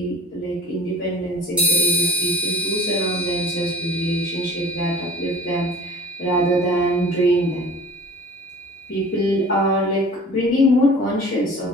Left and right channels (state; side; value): normal; both; correlation 0.46